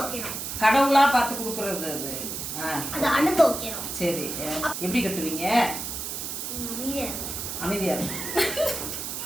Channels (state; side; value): noise; right; hiss, 5 dB below the sound